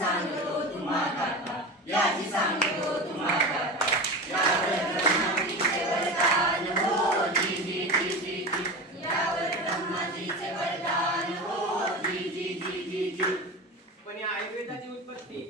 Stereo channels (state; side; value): normal; both; correlation 0.27